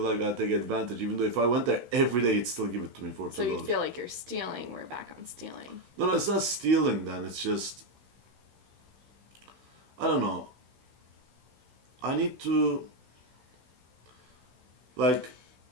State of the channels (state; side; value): late; left; 16 ms